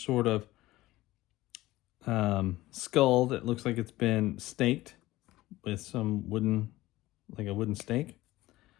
sort of skull that looks like it's been staked with some wooden, like a wooden stake.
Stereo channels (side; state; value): right; quieter; 17.5 dB